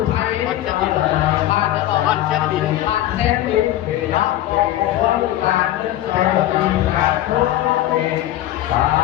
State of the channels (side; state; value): right; quieter; 13.9 dB